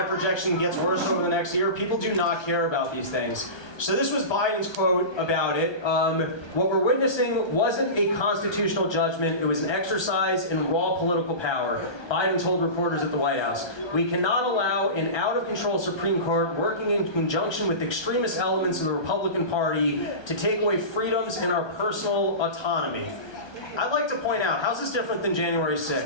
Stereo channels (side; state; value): right; late; 1.2 ms